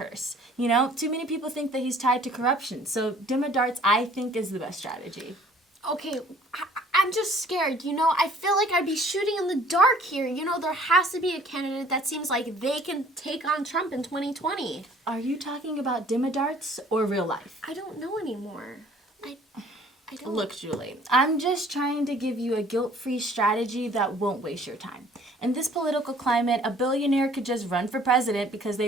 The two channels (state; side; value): normal; both; correlation 0.55